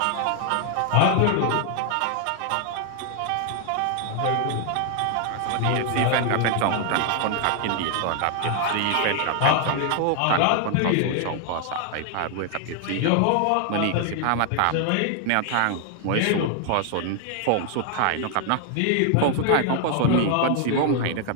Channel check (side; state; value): both; different; correlation 0.00